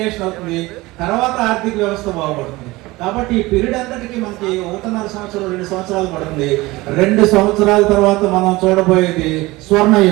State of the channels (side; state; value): left; quieter; 20.7 dB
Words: అవుతుంది, తర్వాత ఆర్థిక వ్యవస్థ బాగుపడుతుంది. కాబట్టి ఈ పీరియడ్ అంతటికి మనకి 1.5 సంవత్సరం 2 సంవత్సరాలు పడుతుంది. 2 సంవత్సరాల తర్వాత మనం చూడబోయేది